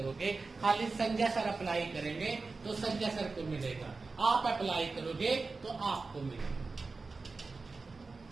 खाली संजय सर अप्लाई करेंगे तो संजय सर को मिलेगा, आप अप्लाई करोगे तो आपको मिलेगा।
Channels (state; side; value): quieter; left; 4.0 dB